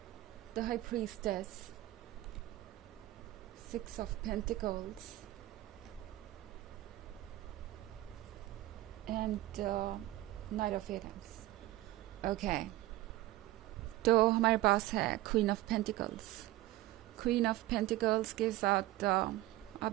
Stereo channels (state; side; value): quieter; left; 16.6 dB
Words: the High Priestess, Six of Pentacles, and Knight of Wands. Okay, तो हमारे पास है Queen of Pentacles. Queen of Pentacles के साथ आप